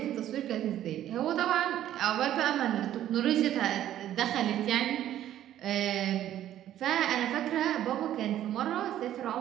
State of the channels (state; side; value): quieter; left; 12.0 dB